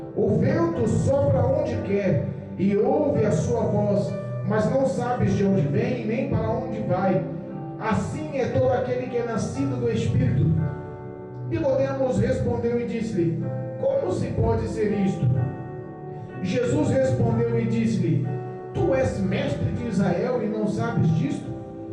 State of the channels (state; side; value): identical; both; correlation 1.00